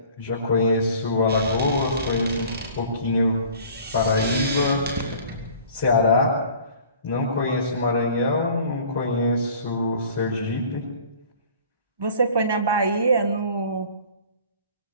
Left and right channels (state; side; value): inverted; both; correlation -0.48